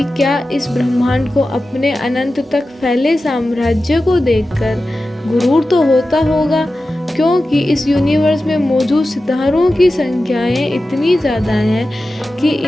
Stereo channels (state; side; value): normal; both; correlation 0.94